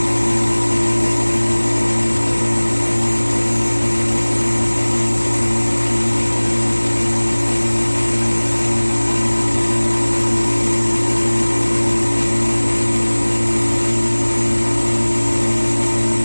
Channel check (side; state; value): both; inverted; correlation -1.00